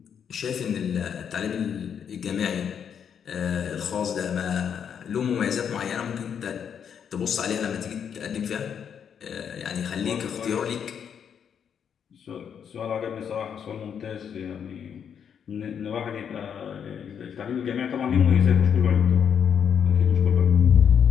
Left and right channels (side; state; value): right; quieter; 7.8 dB